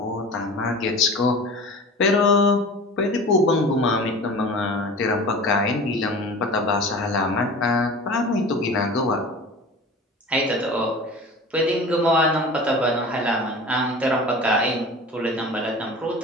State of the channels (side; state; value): both; normal; correlation 0.38